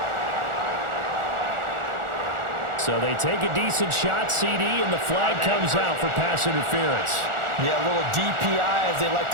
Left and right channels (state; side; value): late; left; 1.4 ms